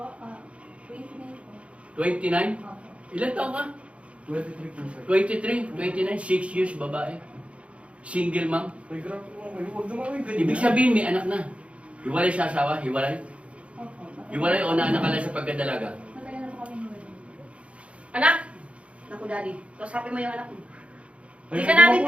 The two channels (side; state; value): left; late; 0.062 ms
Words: 29 po. 29? Opo. Ilan taon ka? 23 po, sir. 23, 29, 6 years babae. Single mom. Tay, grabe mo. Huwag naman kayo ganyan. Ibig sabihin may anak na. Hiwalay sa asawa? Hiwalay? Opo. Hiwalay o naanak ka lang sa pagkadalaga? Matagal na po kami hiwalay. Anak? Naku, daddy. Kausapin mo yung anak mo. Ay, Hindi ka huwag namin mo-